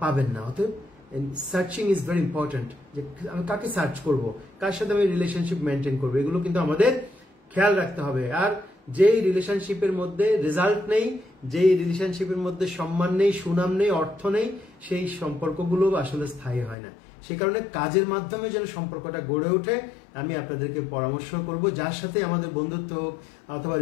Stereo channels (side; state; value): right; drops out; at 16.8 s